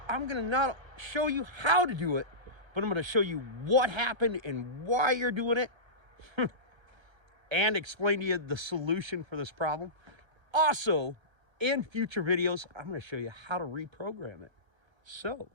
I'm going to not show you how to do it, but I'm going to show you what happened and why you're doing it and explain to you the solution for this problem. Also, in future videos, I'm going to show you how to reprogram it so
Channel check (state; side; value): late; left; 1.3 ms